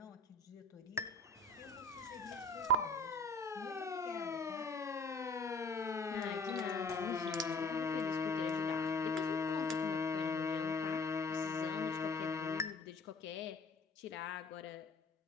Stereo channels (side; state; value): right; quieter; 3.2 dB